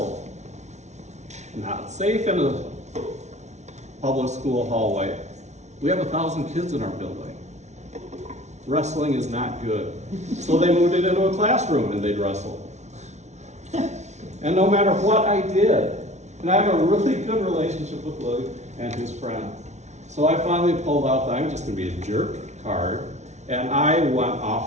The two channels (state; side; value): late; left; 0.33 ms